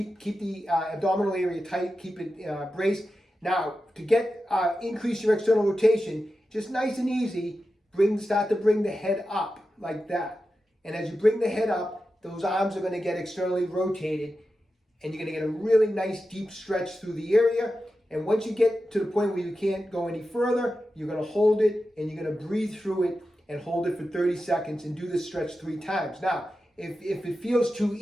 the abdominal area tight. Keep it braced. Now, to increase your external rotation, just nice and easy, start to bring the head up like that. And as you bring the head up, those arms are going to get externally rotated, and you're going to get a really nice deep stretch through the area. And once you get to the point where you can't go any further, you're going to hold it and you're going to breathe through it and hold it for 30 seconds and do this stretch 3 times. Now, if it feels too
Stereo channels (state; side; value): normal; both; correlation 0.91